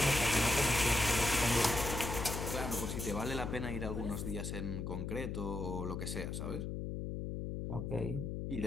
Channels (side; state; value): left; noise; hum, 4 dB below the sound